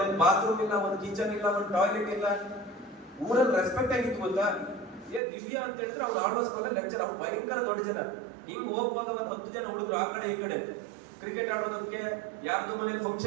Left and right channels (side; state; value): left; drops out; at 5.2 s